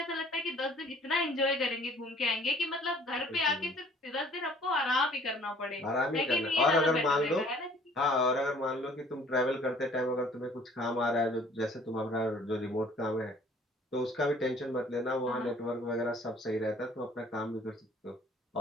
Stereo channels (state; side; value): normal; both; correlation 0.55